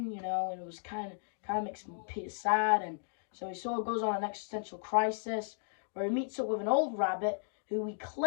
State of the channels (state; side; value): silent; right; digital silence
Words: And it was kind of makes Peter sad, and so he sort of goes on an existential crisis where he meets up with an old rabbit who he